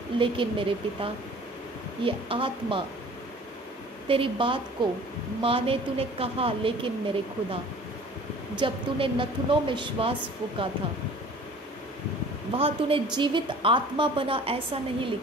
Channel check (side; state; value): both; normal; correlation 0.47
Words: लेकिन मेरे पिता ये आत्मा तेरी बात को माने तूने कहा, लेकिन मेरे खुदा जब तूने नथुनों में श्वास फूका था वहाँ तूने जीवित आत्मा बना ऐसा नहीं